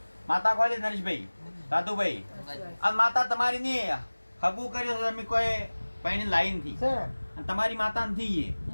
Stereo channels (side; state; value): both; inverted; correlation -1.00